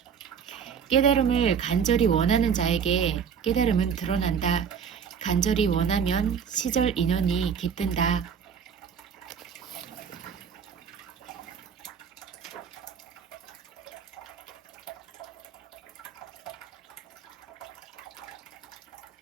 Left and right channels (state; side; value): quieter; left; 7.1 dB